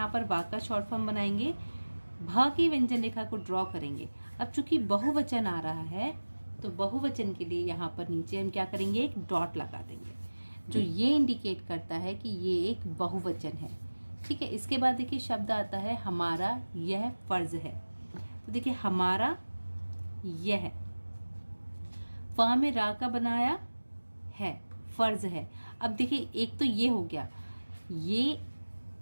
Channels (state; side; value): inverted; both; correlation -1.00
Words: पर व का शॉर्ट फॉर्म बनाएंगे। भ की व्यंजन रेखा को ड्रॉ करेंगे। अब चूंकि बहुवचन आ रहा है तो बहुवचन के लिए यहाँ पर नीचे हम क्या करेंगे, एक डॉट लगा देंगे जो ये इंडिकेट करता है कि ये एक बहुवचन है। ठीक है, इसके बाद देखिए शब्द आता है हमारा यह फर्ज है। तो देखिए हमारा यह, फ में रा का बनाया है, फर्ज है। अब देखिए एक तो ये हो गया, ये